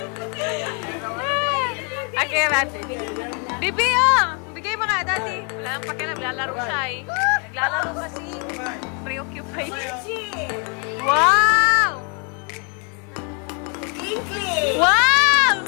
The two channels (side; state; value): right; quieter; 36.4 dB